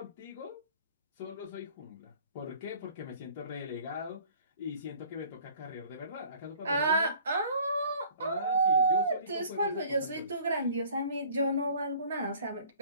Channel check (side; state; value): both; inverted; correlation -0.51